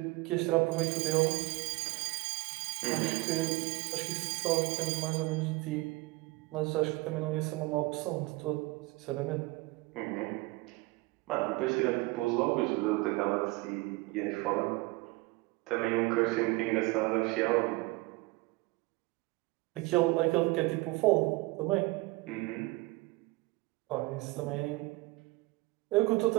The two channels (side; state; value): left; quieter; 22.1 dB